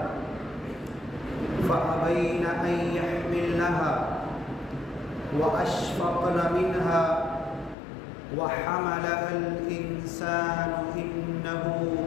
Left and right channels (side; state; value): right; drops out; at 7.8 s